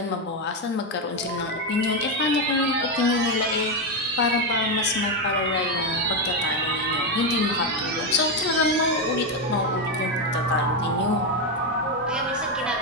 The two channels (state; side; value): normal; both; correlation 0.07